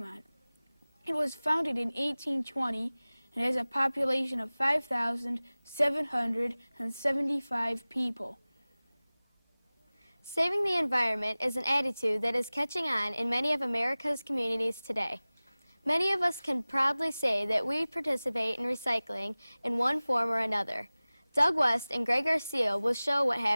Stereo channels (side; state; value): both; inverted; correlation -0.99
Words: It was founded in 1820 and has a population of 5,775 people. Saving the environment is an attitude that is catching on in many of America's communities today. Many of us can proudly say that we participate in recycling in one form or another. Doug West and Greg Garcia will show what